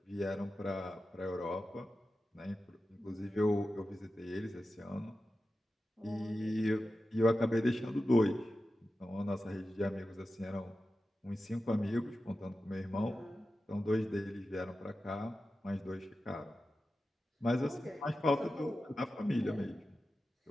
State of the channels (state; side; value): normal; both; correlation 0.93